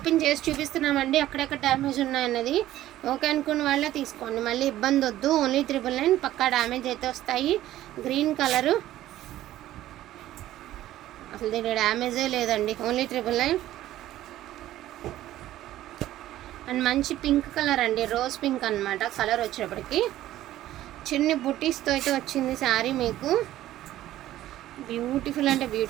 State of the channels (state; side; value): quieter; left; 14.1 dB